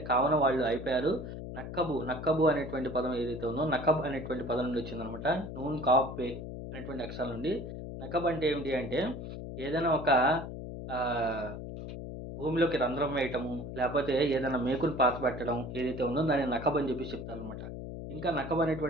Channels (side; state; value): left; noise; hum, 8 dB below the sound